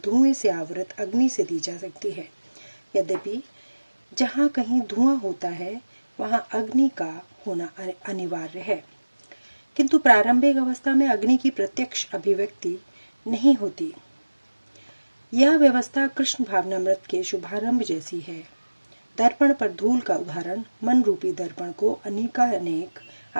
धुएं से आवृत अग्नि से दी जा सकती है। यद्यपि जहाँ कहीं धुआं होता है वहाँ अग्नि का होना अनिवार्य है, किंतु प्रारंभिक अवस्था में अग्नि की प्रत्यक्ष अभिव्यक्ति नहीं होती। यह व्यवस्था कृष्ण भावनामृत के शुभारंभ जैसी है। दर्पण पर धूल का उदाहरण मन रूपी दर्पण को अनेक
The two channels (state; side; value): inverted; both; correlation -1.00